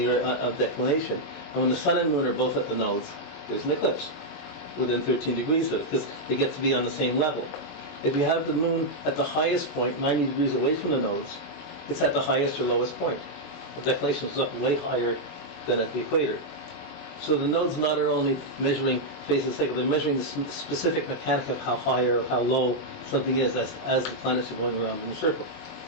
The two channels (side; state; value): right; late; 21 ms